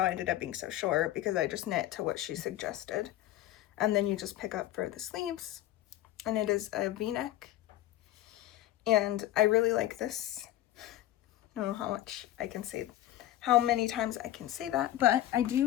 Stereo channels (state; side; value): quieter; right; 14.1 dB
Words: I ended up being so short, because I just knit to what she suggested. And then you just pick up for the sleeves, and it is a v-neck. And I really like this. I don't know how much I can say, how many times I can say that, but I